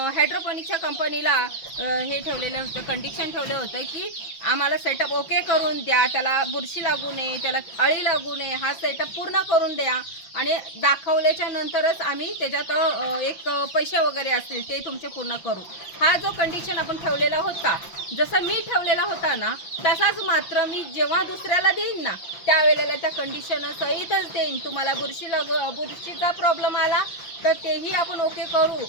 हायड्रोपोनिकच्या कंपनीला हे ठेवलेलं होतं, कंडिशन ठेवलं होतं की आम्हाला सेटअप ओके करून द्या, त्याला बुरशी लागू नये, त्याला अळी लागू नये, हा सेटअप पूर्ण करून द्या आणि दाखवल्याच्या नंतरच आम्ही त्याच्यात एक पैसे वगैरे असतील ते तुमचे पूर्ण करू. हा जो कंडिशन आपण ठेवलेला होता, जसं मी ठेवलेला होता ना तसाच मात्र मी जेव्हा दुसऱ्याला देईन ना त्यावेळेला त्या कंडिशन सहितच देईन. तुम्हाला बुरशीचा प्रॉब्लेम आला तर तेही आपण ओके करू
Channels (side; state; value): right; late; 5.9 ms